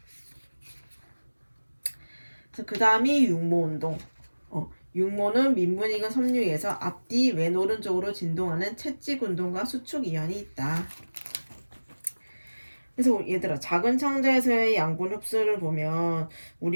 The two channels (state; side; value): inverted; both; correlation -1.00